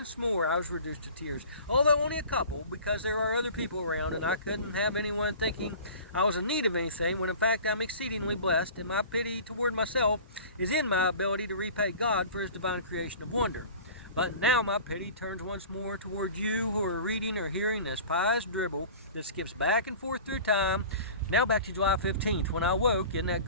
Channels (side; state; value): both; inverted; correlation -0.41